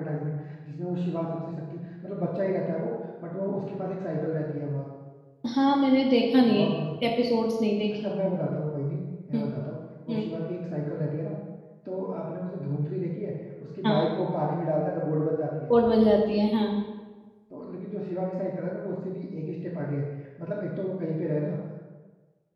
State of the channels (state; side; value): identical; both; correlation 1.00